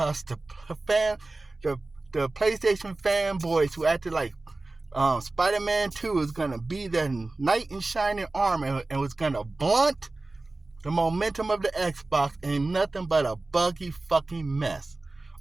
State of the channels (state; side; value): quieter; left; 3.1 dB